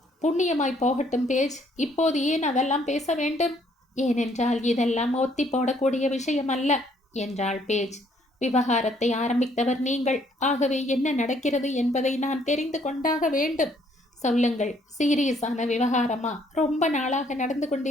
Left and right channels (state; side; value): normal; both; correlation 0.66